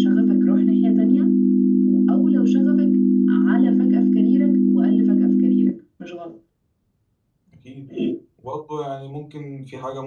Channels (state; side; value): identical; both; correlation 1.00